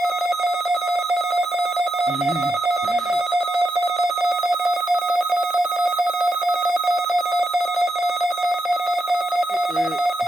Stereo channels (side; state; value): both; normal; correlation 0.84